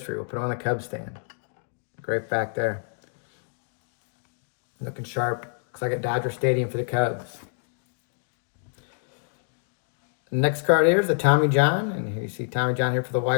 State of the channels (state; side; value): silent; right; digital silence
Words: We'll put it on the Cubs stand. Great fact there. Looking sharp. Looks like a Dodger Stadium for the Cubs. The next card here is the Tommy John. And here you see Tommy John here for the